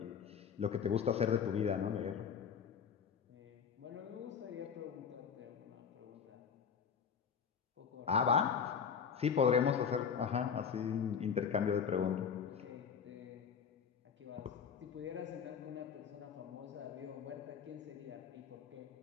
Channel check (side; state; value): right; quieter; 7.0 dB